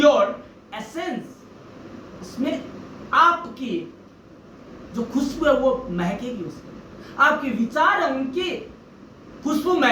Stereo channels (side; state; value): both; identical; correlation 1.00